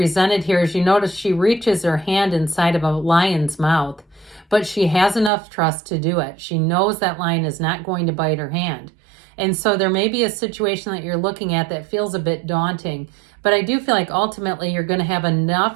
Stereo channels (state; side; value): drops out; left; at 5.3 s